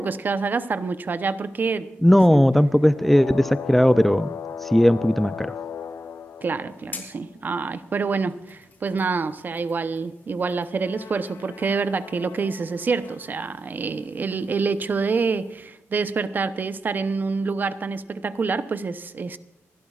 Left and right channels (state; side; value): normal; both; correlation 0.91